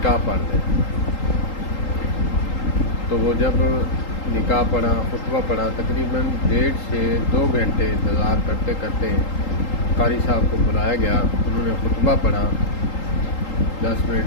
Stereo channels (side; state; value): right; late; 3.8 ms